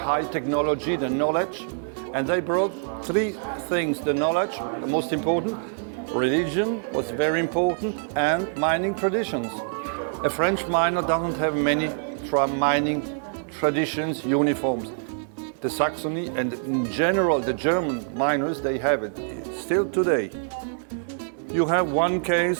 technology, the knowledge. And they brought three things: the knowledge, the most important, religion was very important, and mining traditions. A French miner doesn't have many mining traditions, uniforms. The Saxony and in general the German miners, they have it still today. You have one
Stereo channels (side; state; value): left; silent; digital silence